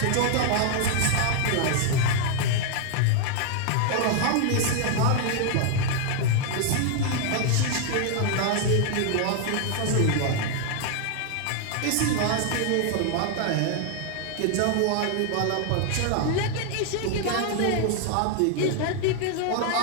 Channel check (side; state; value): both; different; correlation 0.00